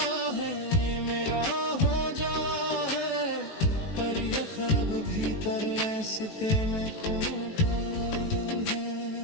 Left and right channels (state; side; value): late; right; 19 ms